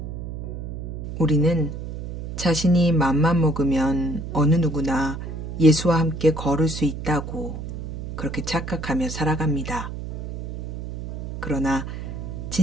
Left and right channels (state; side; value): noise; right; hum, 7 dB below the sound